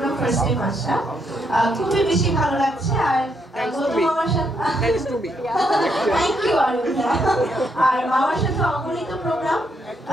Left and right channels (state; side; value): normal; both; correlation 0.76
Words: ফার্স্ট টাইম আসা, খুবই বেশি ভালো লাগছে। আর গৌতম মামার সাথে থ্যাংক ইউ আরিয়াম ভাইয়া। আর মামার সাথে অগণিত প্রোগ্রাম